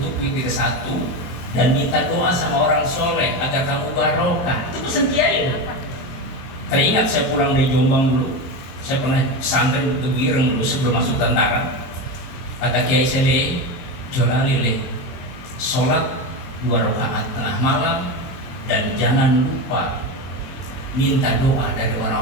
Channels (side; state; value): right; late; 23 ms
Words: witir 1 dan minta doa sama orang soleh agar kamu barokah. Itu pesan kiai. Teringat saya pulang dari Jombang dulu, saya pernah pesantren di Bireng dulu sebelum masuk tentara. Kata kiai saya, Jolali sholat 2 rakaat tengah malam dan jangan lupa minta doa dari